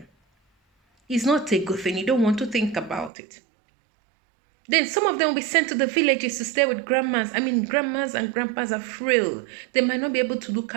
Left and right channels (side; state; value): left; drops out; at 3.1 s